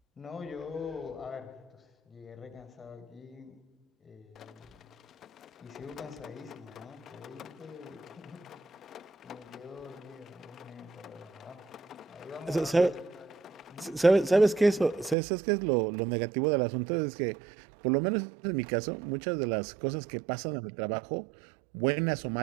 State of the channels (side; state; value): left; drops out; at 15.2 s